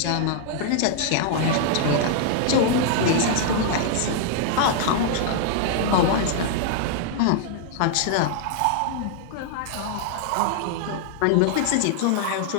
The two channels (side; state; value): both; different; correlation -0.01